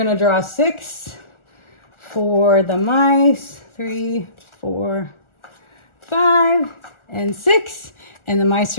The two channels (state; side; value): late; right; 1.4 ms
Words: draw 6 for the mice. 3, 4, 5, and 6. And the mice